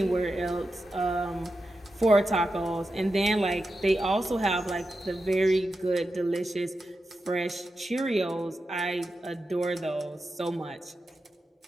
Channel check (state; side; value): normal; both; correlation 0.90